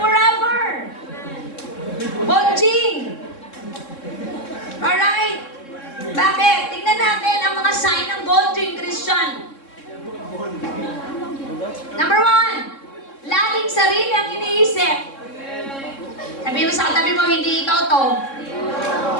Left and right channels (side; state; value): right; late; 3.7 ms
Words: Bonjing. Alright? Bakit? Tingnan natin ang mga sign ng bonjing Christian. Number 1, laging sarili ang iniisip. Sabihin mo sa katabi mo, hindi ikaw to.